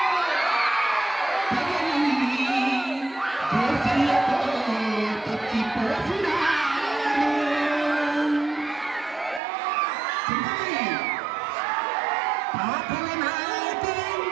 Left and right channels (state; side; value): drops out; left; at 9.4 s